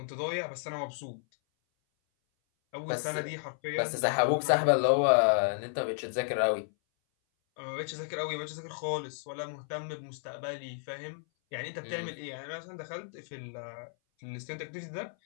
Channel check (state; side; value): silent; right; 56 dB below the other